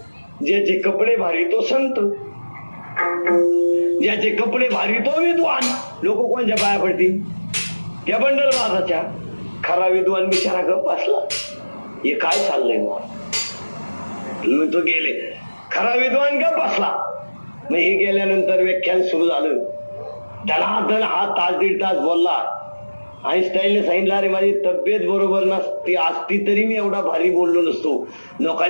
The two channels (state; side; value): inverted; both; correlation -1.00